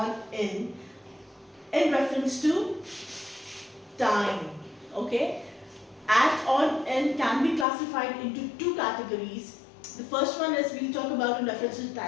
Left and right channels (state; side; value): drops out; right; at 7.7 s